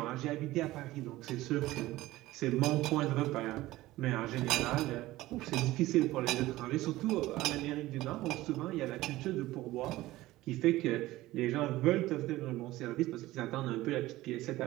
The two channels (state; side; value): quieter; left; 17.3 dB